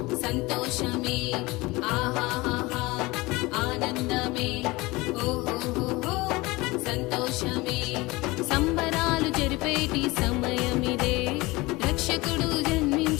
సంతోషమే ఆహాహాహా ఆనందమే ఓహోహోహో సంతోషమే సంబరాలు జరిపేటి సమయమిదే రక్షకుడు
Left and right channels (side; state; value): right; quieter; 22.1 dB